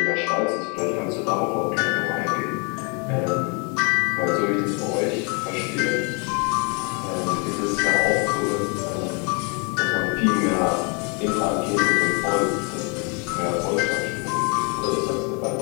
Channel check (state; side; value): quieter; right; 33.7 dB